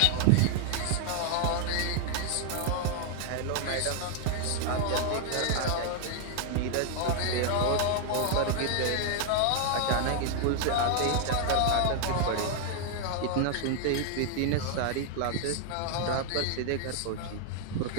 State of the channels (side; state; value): both; different; correlation 0.00